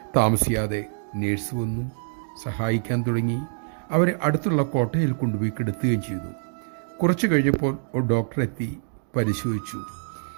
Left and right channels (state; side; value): silent; left; digital silence